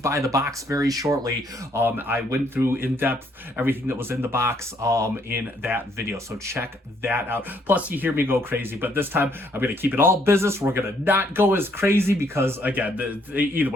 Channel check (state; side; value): normal; both; correlation 0.68